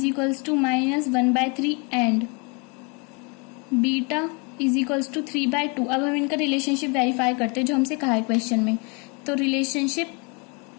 equals to -1/3 and beta is equals to 3/2। अब हम इनका रिलेशनशिप वेरीफाई करते हैं जो हमसे कहा है क्वेश्चन में। तो रिलेशनशिप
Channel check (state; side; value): quieter; right; 32.5 dB